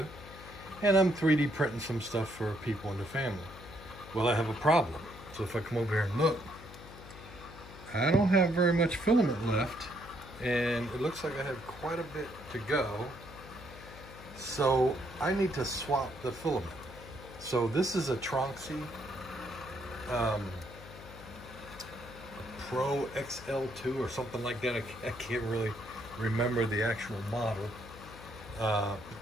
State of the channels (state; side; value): noise; left; hum, 16 dB below the sound